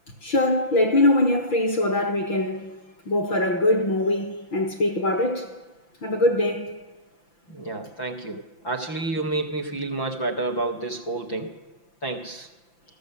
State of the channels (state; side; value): late; right; 5.9 ms